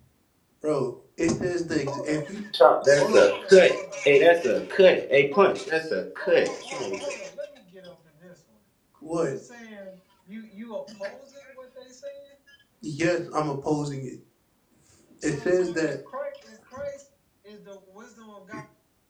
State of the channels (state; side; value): identical; both; correlation 1.00